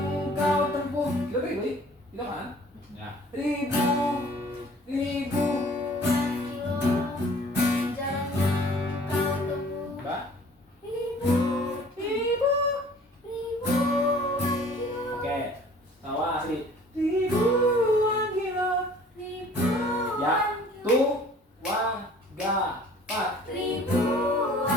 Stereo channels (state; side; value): normal; both; correlation 0.51